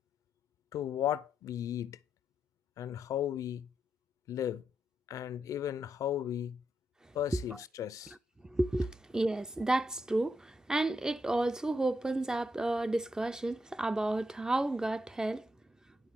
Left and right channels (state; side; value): normal; both; correlation 0.82